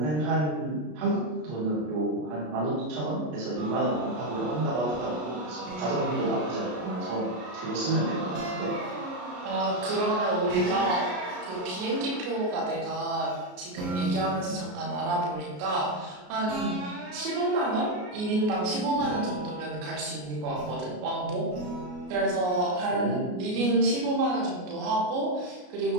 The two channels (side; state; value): left; late; 33 ms